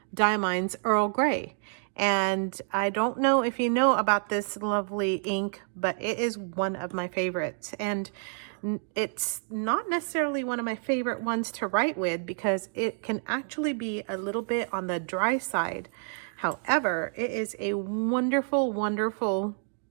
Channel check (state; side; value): silent; left; 59 dB below the other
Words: Diamine's Earl Grey. And I don't know if you know about this lovely ink, but it is one of my favorites. And it's not necessarily one of my favorite ones to write with because it can actually be a little bit on the dry side. However, it is a wonderful, wonderful